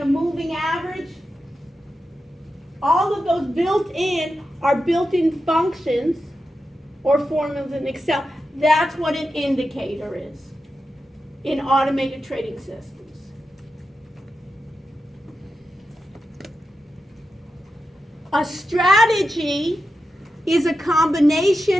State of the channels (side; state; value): both; normal; correlation 0.90